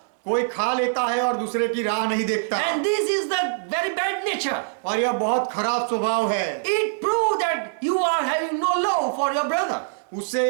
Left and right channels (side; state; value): left; silent; digital silence